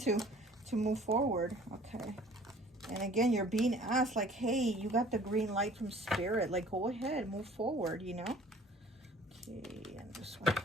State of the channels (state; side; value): normal; both; correlation 0.51